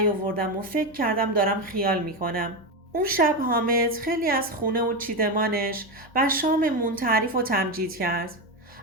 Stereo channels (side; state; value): both; normal; correlation 0.13